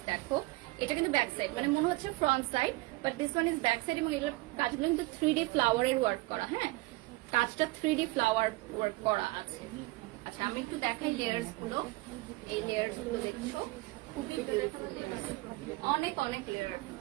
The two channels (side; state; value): left; quieter; 21.7 dB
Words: দেখো এটা কিন্তু ব্যাক সাইড, মানে মনে হচ্ছে front side, but this one is back side. এবং এগুলোর কাজগুলো কিন্তু 3D ফ্লাওয়ারের ওয়ার্ক করা। হ্যাঁ, কাজটা 3D ফ্লাওয়ার ওয়ার্ক করা আছে। আচ্ছা, আমি একটু দেখাই লেয়ার্স গুলো। এই লেয়ার্স গুলো দেখছো, খুবই বিউটিফুল, অনেক অনেক লেয়ার,